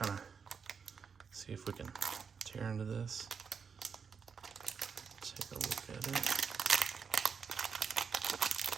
of see if we can tear into this. Take a look at it.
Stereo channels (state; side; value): quieter; left; 6.2 dB